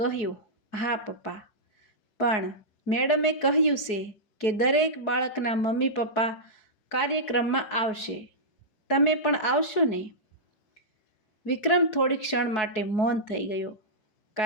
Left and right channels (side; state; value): right; late; 4.7 ms